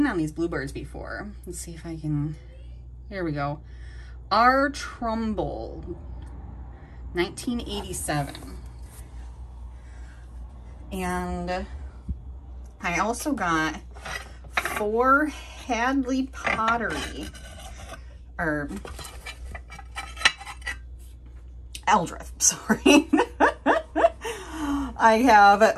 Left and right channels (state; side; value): identical; both; correlation 1.00